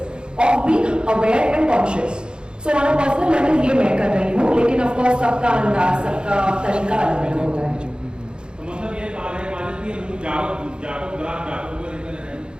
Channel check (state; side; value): late; left; 0.050 ms